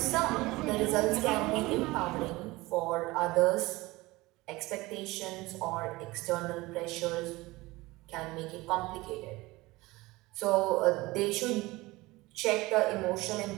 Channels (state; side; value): quieter; left; 20.7 dB